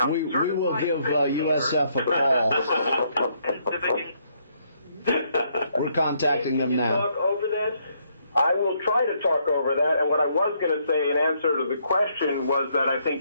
We will give USF a call. We're contacting them now. Talk over this? I will try to talk over that, and what I was going to say in answer to the question was that I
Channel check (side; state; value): both; inverted; correlation -0.71